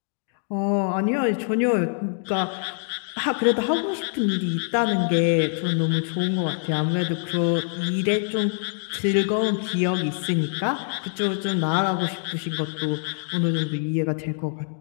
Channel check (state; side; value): silent; right; digital silence